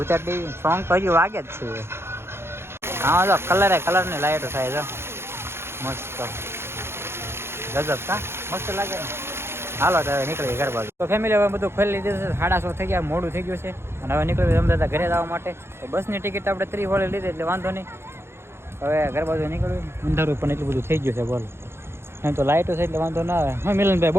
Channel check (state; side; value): late; left; 0.12 ms